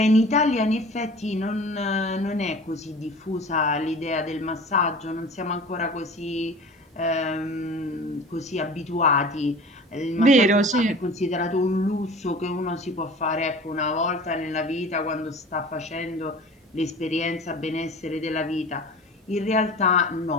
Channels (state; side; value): normal; both; correlation 0.40